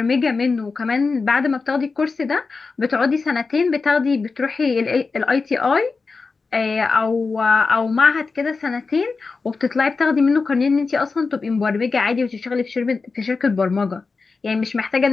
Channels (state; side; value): quieter; right; 4.4 dB